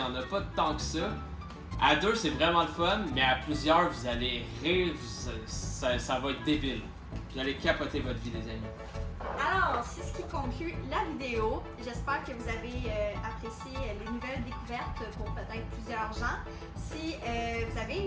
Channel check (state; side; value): identical; both; correlation 1.00